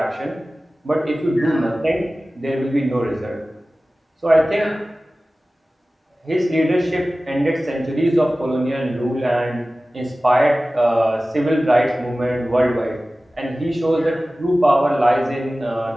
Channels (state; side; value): normal; both; correlation 0.97